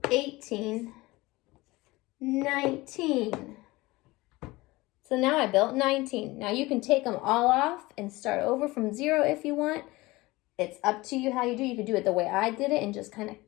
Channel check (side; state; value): right; quieter; 20.8 dB